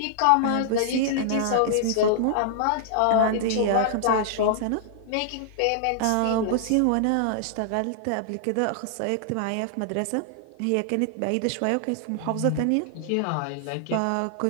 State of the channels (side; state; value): both; different; correlation -0.01